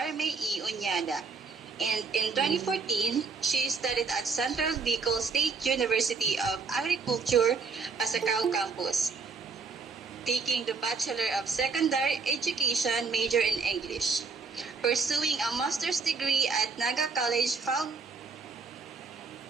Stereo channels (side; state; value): left; quieter; 4.8 dB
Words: E. Unyada. And in 2014, she studied at Central Bicol State University of Agriculture, Pasacao campus, taking the Bachelor of Secondary Education major in English, pursuing a master's degree at Naga College Foundation